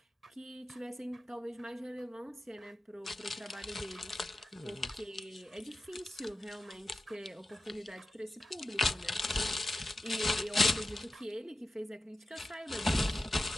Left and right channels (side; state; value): both; normal; correlation 0.93